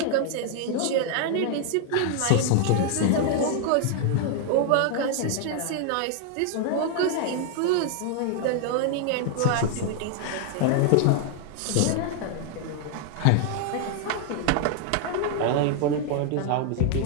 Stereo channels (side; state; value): both; different; correlation 0.00